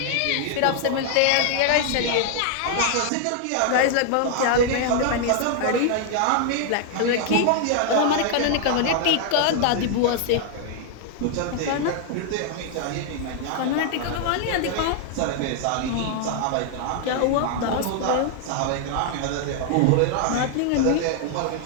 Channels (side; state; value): both; different; correlation 0.00